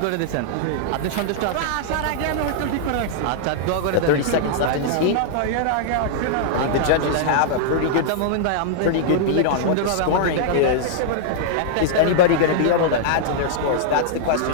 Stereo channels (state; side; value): different; both; correlation -0.01